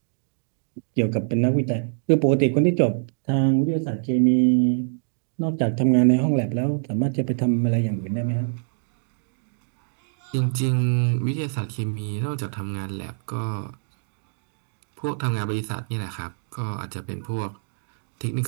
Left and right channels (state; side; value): silent; left; digital silence